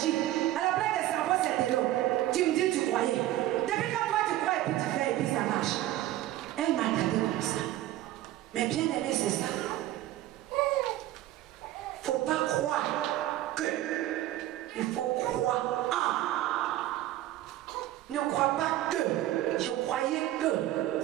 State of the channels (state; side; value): quieter; left; 14.5 dB